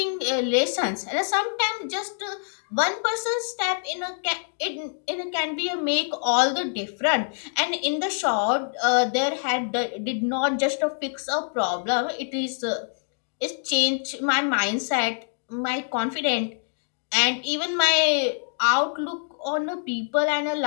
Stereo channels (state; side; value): silent; right; digital silence